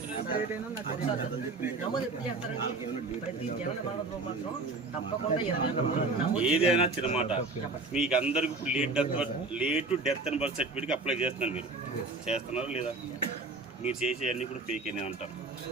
ఏదైనా చిన్నమాట మీకు అందరికి లేట్ డెత్ అండ్ బర్త్ సర్టిఫికేట్కి అప్లై చేస్తున్నారు. మీరు చేస్తున్నారా లేదా? మీరు చేసేవన్నీ కూడా ఫేక్ అని అంటారు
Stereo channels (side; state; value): left; quieter; 3.3 dB